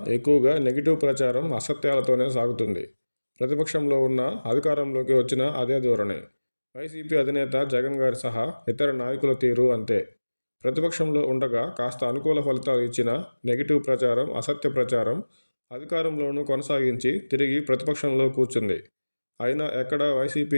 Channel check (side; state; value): both; inverted; correlation -1.00